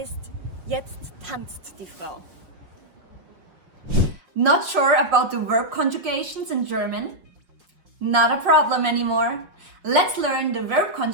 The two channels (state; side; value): late; left; 5.6 ms